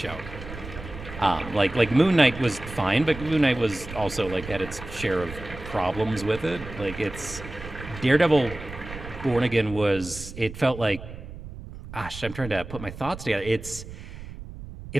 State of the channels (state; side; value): noise; right; rumble, 12 dB below the sound